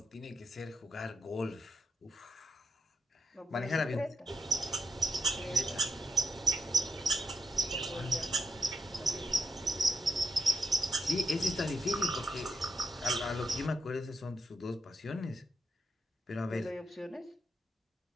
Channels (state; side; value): normal; both; correlation 0.84